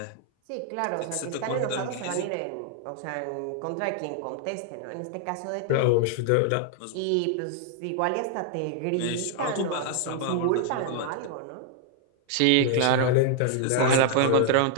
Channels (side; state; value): both; different; correlation 0.00